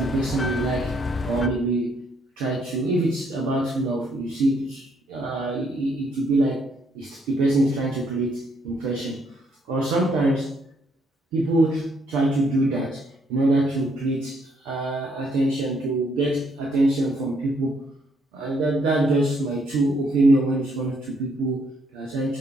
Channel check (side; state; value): both; normal; correlation 0.70